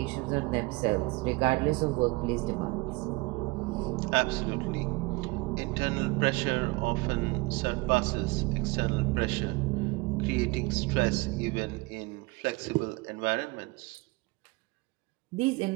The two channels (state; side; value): quieter; left; 24.9 dB